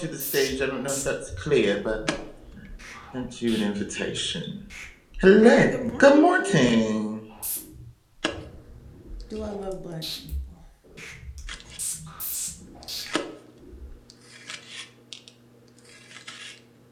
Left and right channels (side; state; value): both; identical; correlation 1.00